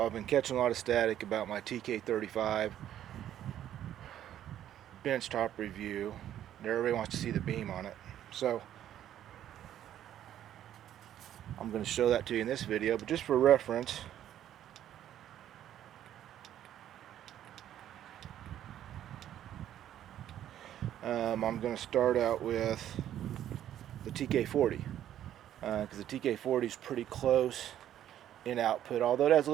been catching a lot of static about my TK35 benchtop review. Everybody wants to see the beam on it, so I'm going to show that to you in this video, but just for reference, I'm going to start out with the TK40 because the TK40 is pretty close in output, although it has a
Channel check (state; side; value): quieter; left; 11.3 dB